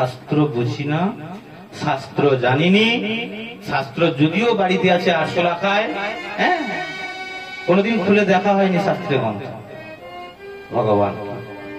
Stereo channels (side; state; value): both; identical; correlation 1.00